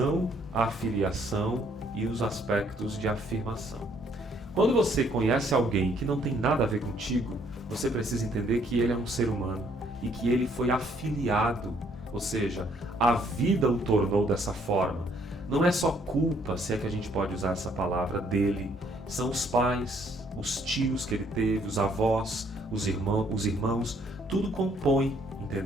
afiliação e os aspectos de afirmação. Quando você conhece alguém que não tem nada a ver contigo, você precisa entender que ele é um ser humano e que ele foi afiliado, ou seja, a vida o tornou dessa forma. Não é só culpa, se é que a gente pode usar essa palavra, dele. São os pais, os tios que ele teve, os avós, os irmãos, tudo compõe,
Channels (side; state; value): both; normal; correlation 0.66